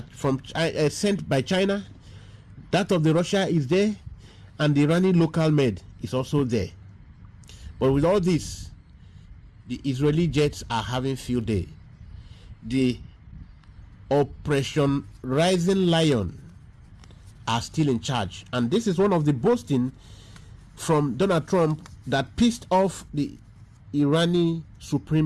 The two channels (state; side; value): identical; both; correlation 1.00